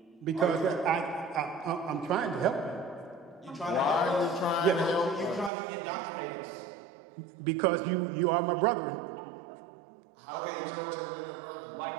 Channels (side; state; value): left; drops out; at 5.5 s